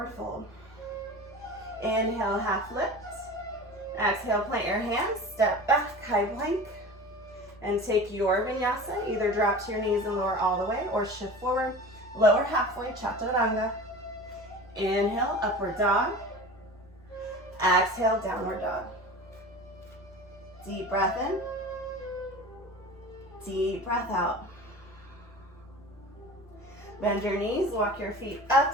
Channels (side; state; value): both; normal; correlation 0.36